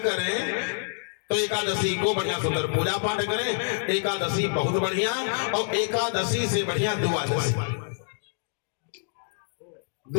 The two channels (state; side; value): silent; right; digital silence